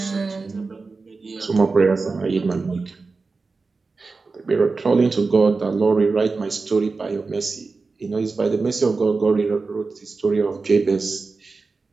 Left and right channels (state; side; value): quieter; left; 4.1 dB